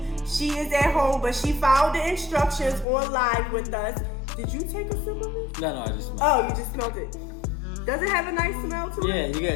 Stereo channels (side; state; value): right; drops out; at 2.9 s